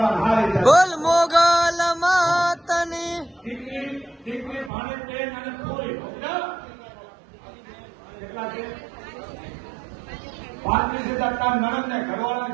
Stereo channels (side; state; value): left; drops out; at 4.7 s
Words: હારી જાય. બોલ મોગલ માતની દીકરી ભાડે બેન અને કોઈ કેટલા છે? 35,000 કામ નણંદ ને